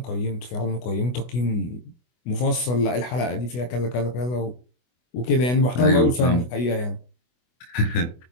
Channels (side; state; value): right; late; 24 ms